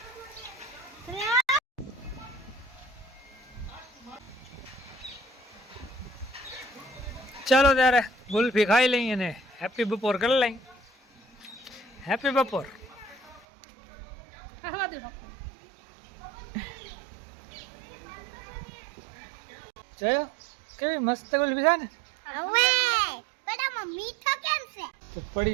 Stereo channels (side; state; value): left; drops out; at 13.5 s